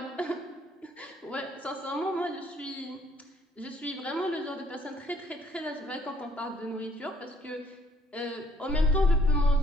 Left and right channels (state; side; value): normal; both; correlation 0.63